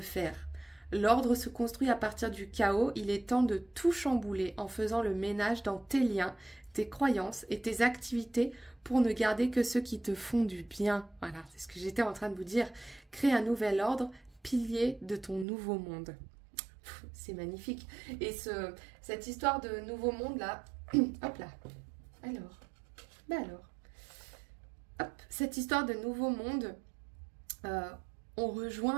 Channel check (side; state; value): left; drops out; at 15.5 s